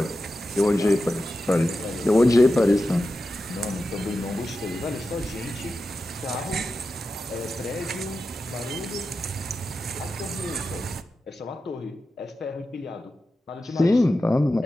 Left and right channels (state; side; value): normal; both; correlation 0.91